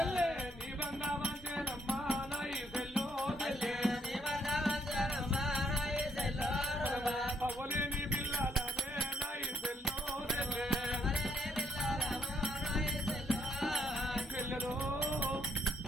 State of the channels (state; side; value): normal; both; correlation 0.72